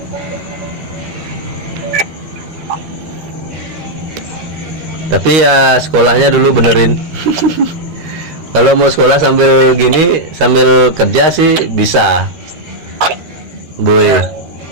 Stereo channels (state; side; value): late; left; 13 ms